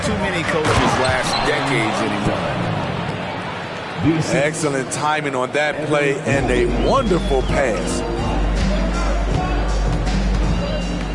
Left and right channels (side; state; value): both; identical; correlation 1.00